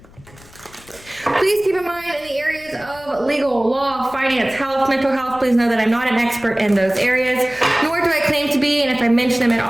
Please keep in mind in the areas of legal, law, finance, health, mental health, please know that I'm not an expert in those areas, nor do I claim to be, and if I mention them at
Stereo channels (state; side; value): noise; left; rumble, 24 dB below the sound